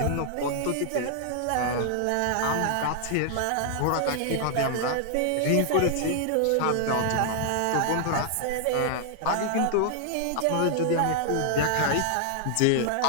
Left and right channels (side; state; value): both; different; correlation 0.00